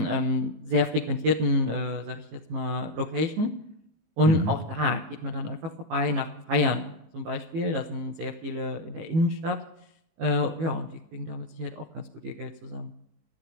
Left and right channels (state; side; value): late; left; 18 ms